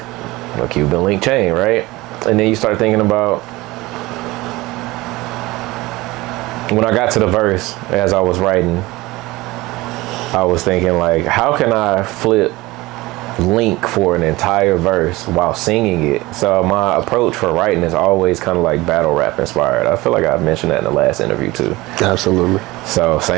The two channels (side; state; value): left; quieter; 20.3 dB